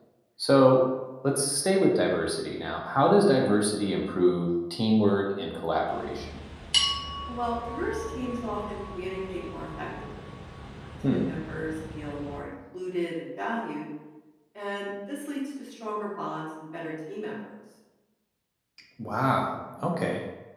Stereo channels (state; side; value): identical; both; correlation 1.00